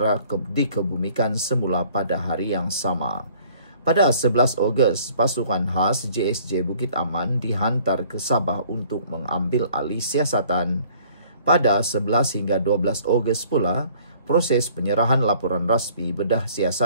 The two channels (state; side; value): inverted; both; correlation -0.56